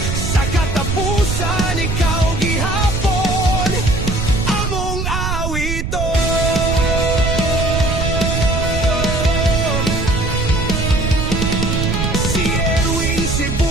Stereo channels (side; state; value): right; noise; rumble, 2 dB below the sound